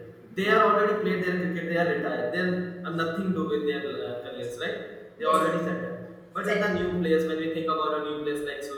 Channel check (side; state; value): both; identical; correlation 1.00